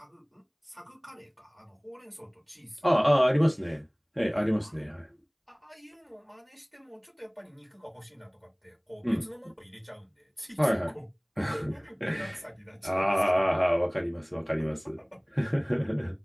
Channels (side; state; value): both; identical; correlation 1.00